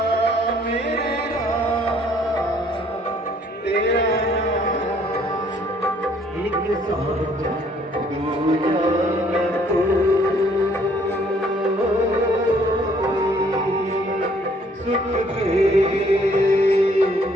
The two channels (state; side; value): normal; both; correlation 0.62